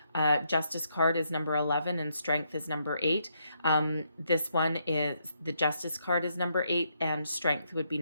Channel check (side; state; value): both; inverted; correlation -0.77